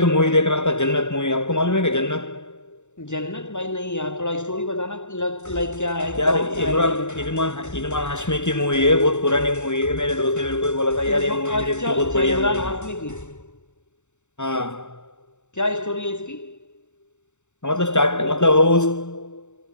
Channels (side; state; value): right; late; 0.84 ms